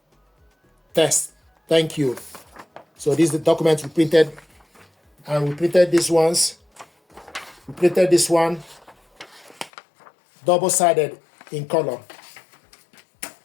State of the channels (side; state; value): right; drops out; at 9.7 s